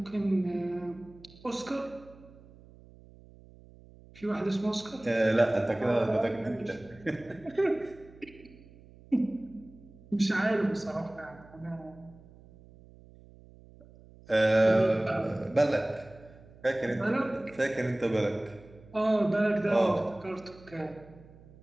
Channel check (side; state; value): right; noise; hum, 23 dB below the sound